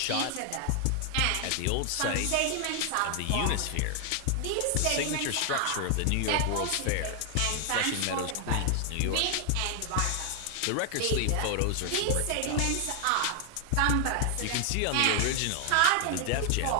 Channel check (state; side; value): different; both; correlation 0.00